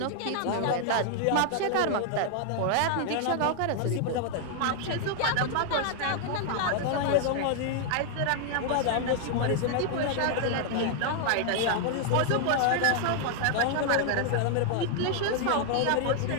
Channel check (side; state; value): both; different; correlation 0.00